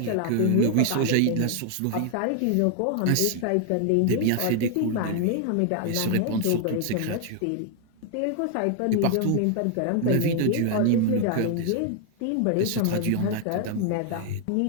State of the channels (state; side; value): different; both; correlation 0.00